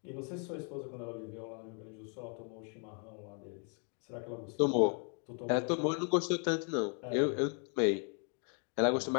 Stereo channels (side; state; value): right; quieter; 39.6 dB